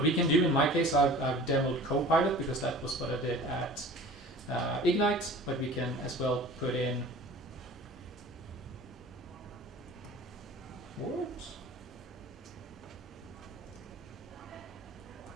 we can do, in my case, I've demoed Copilot because that was what I did at Ignite, but we can as well put in what?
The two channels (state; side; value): normal; both; correlation 0.42